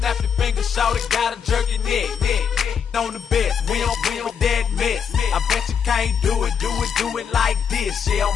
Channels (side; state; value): right; quieter; 7.2 dB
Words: your fingers, shout it, gotta jerk your neck. On the best, we don't that mess. I bet you can't do it like this. Yeah, I'm